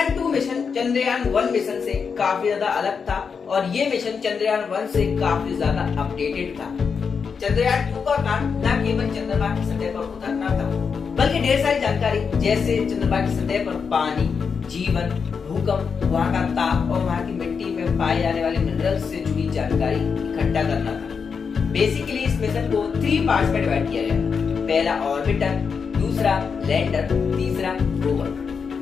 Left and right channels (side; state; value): right; quieter; 5.9 dB